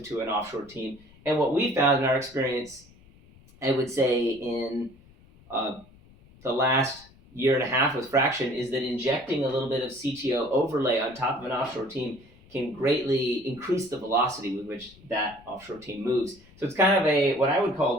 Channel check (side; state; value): left; noise; rumble, 26 dB below the sound